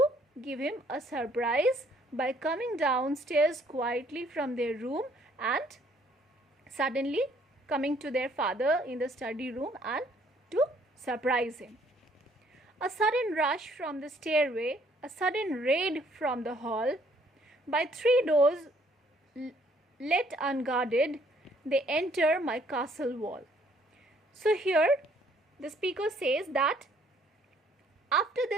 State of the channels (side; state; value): both; normal; correlation 0.63